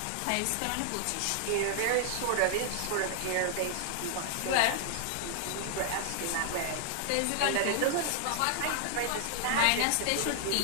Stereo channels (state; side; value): different; both; correlation -0.01